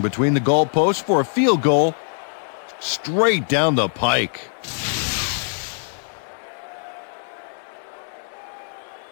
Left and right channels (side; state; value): right; silent; digital silence